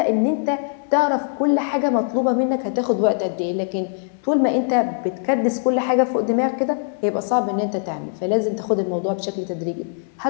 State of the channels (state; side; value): silent; right; 63 dB below the other